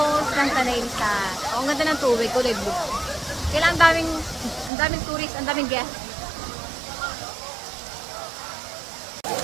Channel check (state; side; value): drops out; left; at 4.7 s